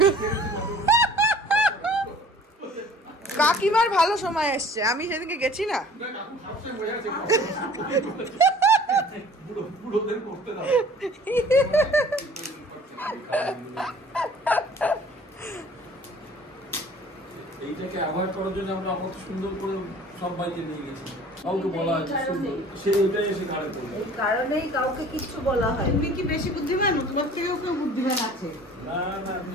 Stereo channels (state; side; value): normal; both; correlation 0.49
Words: কাকিমার ভালো সময় এসছে, আমি সেদিনকে গেছি না। এইটাকে অ্যাভয়েড করার জন্য আমরা কত সুন্দর করে সব বাইকে নিয়ে গেছি, কাউকে বলা হয়েছে সে ওইটাই এসে ঘাড়ে পড়বে। এই কারণেই কাউকে কিছু বলা হয়। তুমি কি বেশি বুদ্ধিমান? তোমার থেকেও কেউ বুদ্ধিমান আছে? না না,